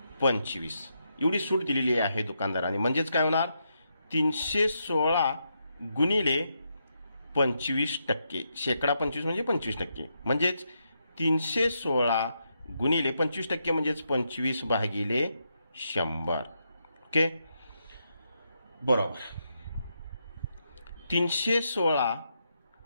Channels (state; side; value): inverted; both; correlation -0.82